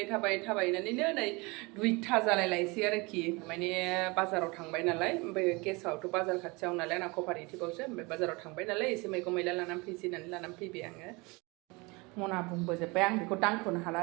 tabai nanti nih duit taza lelai siarki mana pasar orang bay nalai bagi kesau tu pasar kacau nalai nak kooperatif bos pasar orang bay nalai isi mereka mila lanam pisi nanti lanam pi bayang mau nabung bos bayang di kotang pun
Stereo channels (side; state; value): left; quieter; 26.2 dB